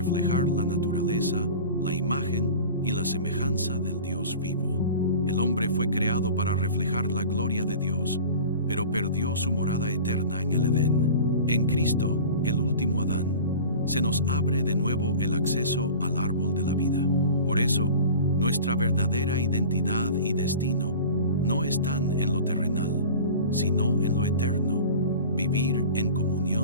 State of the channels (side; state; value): both; inverted; correlation -0.38